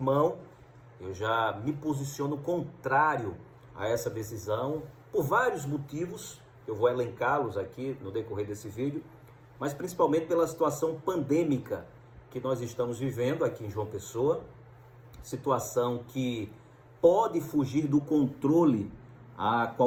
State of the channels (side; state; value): both; identical; correlation 1.00